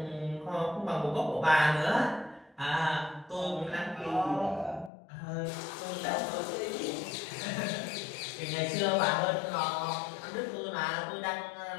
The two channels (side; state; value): right; drops out; at 4.9 s